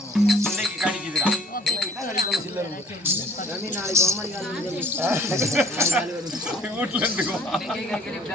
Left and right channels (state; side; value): normal; both; correlation 0.55